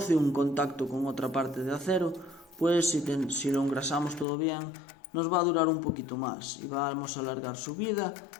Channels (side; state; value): right; drops out; at 4.2 s